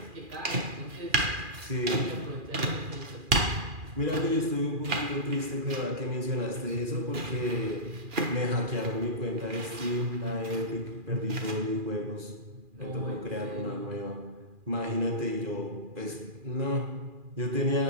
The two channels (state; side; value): late; left; 2.4 ms